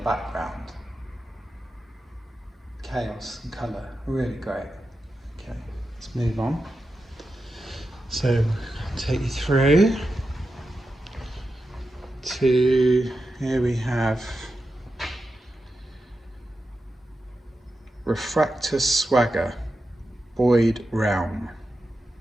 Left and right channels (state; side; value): normal; both; correlation 0.90